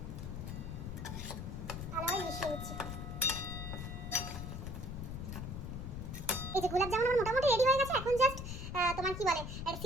ভালোভাবে মিশিয়ে নিচ্ছি। এই যে গোলাপ জামুন আমার মোটামুটি রেডি হয়ে গেছে। এখন জাস্ট তোমার কি বলে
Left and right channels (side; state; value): left; noise; rumble, 6 dB below the sound